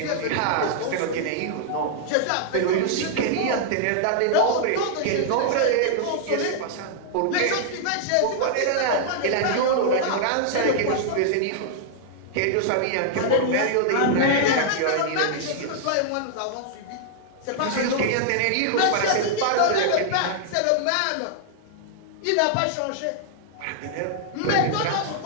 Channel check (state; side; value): different; both; correlation -0.01